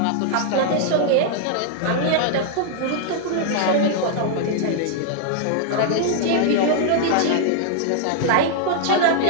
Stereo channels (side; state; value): both; different; correlation -0.01